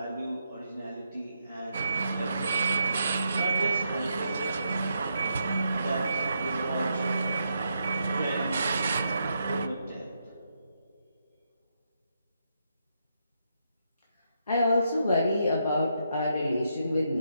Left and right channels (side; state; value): both; inverted; correlation -0.80